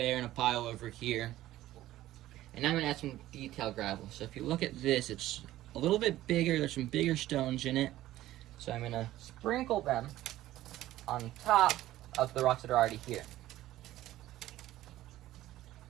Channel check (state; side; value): quieter; left; 14.8 dB